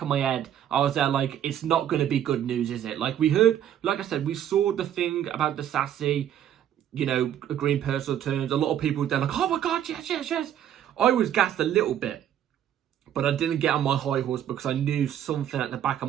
of my head. I was there like, it's not going to be good news, is it? Like we heard, like I said, we saw the thing about Disasi, you know, agreeing personal terms. A lot of people were there like, oh my God, yes. I was gassed a little bit, but I didn't get on my high horse because I knew something at the back of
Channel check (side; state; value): left; quieter; 10.5 dB